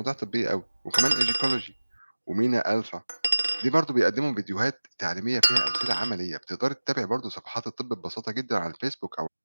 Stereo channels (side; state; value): both; inverted; correlation -1.00